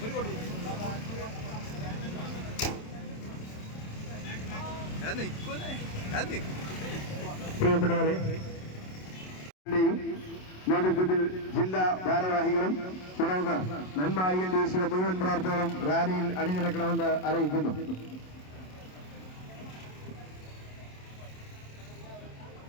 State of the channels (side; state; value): right; late; 27 ms